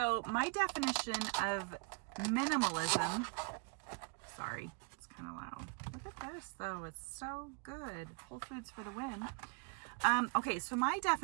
my definition of minimalism, sorry, it's kind of loud. Look at this though, it's so good. Whole Foods for the win. Okay, so my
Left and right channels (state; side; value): quieter; left; 36.3 dB